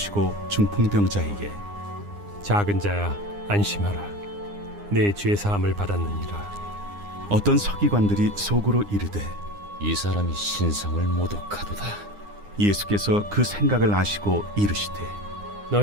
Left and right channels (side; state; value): left; late; 9.8 ms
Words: 중풍병자에게 작은 자야, 안심하라. 내 죄 사함을 받았느니라. 어떤 서기관들이 속으로 이르되 이 사람이 신성을 모독하도다. 예수께서 그 생각을 아시고 이르시되